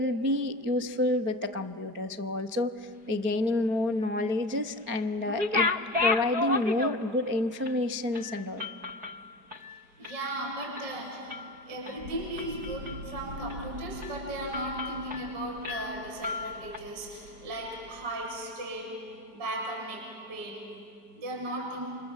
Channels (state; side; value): late; left; 4.8 ms